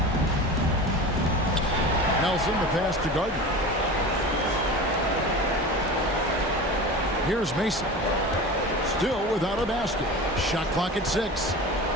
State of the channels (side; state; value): both; normal; correlation 0.32